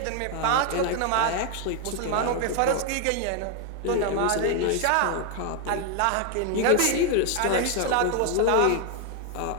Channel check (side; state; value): both; different; correlation 0.00